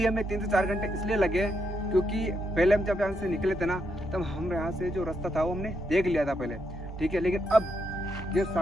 हमें 3 से 4 घंटे इसलिए लगे क्योंकि पहले हम जब यहाँ से निकले थे ना, तब हम यहाँ से जो रास्ता था वो हमने देख लिया था पहले, ठीक है। लेकिन अब ये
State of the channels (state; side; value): normal; both; correlation 0.80